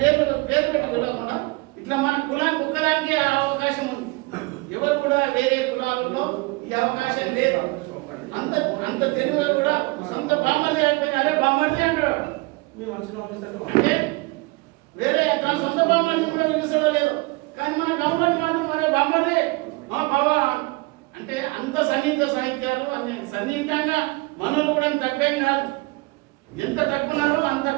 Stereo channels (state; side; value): quieter; left; 24.9 dB